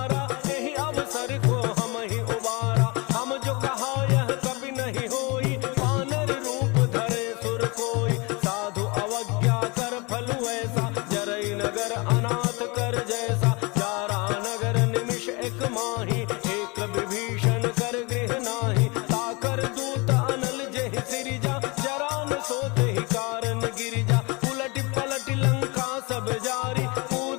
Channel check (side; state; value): right; quieter; 27.6 dB